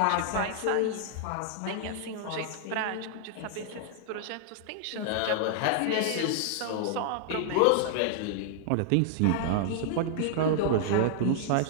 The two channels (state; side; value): different; both; correlation -0.01